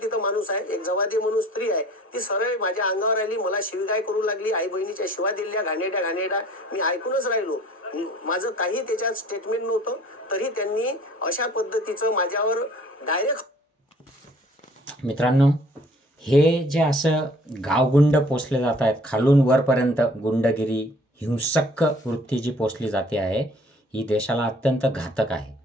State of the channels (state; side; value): normal; both; correlation 0.53